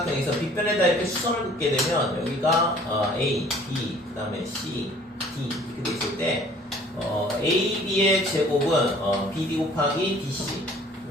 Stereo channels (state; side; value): normal; both; correlation 0.53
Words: 빗변에다 이렇게 수선을 긋게 되면 여기가 A, B, 그 다음에 C, D 이렇게 돼 있을 때 A, B의 제곱은 BD 곱하기 DC